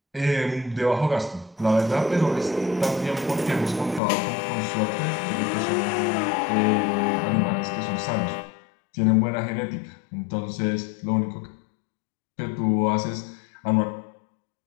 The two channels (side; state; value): right; drops out; at 4.0 s